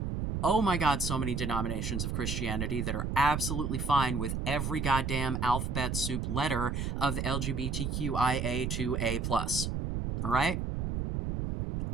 oh my god, so many denominations of Christianity that are absolutely fine with every goddamn alphabet soup letter of the LGBTQIA2A+. Alright?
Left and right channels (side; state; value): right; noise; rumble, 2 dB below the sound